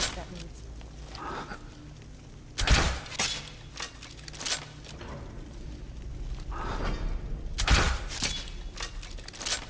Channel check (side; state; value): both; identical; correlation 1.00